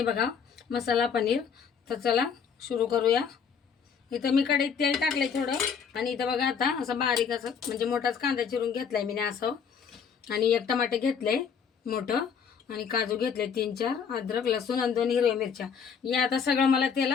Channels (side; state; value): right; quieter; 6.7 dB